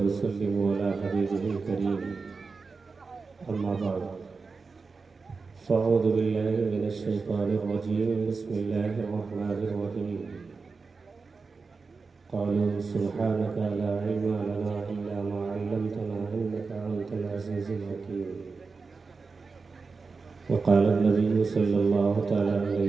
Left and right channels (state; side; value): quieter; left; 4.5 dB